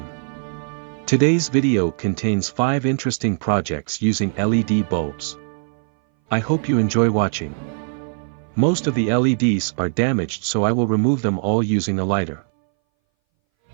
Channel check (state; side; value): silent; left; 61 dB below the other